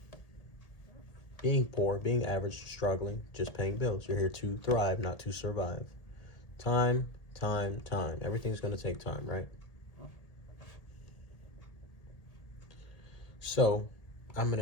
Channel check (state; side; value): late; right; 1.8 ms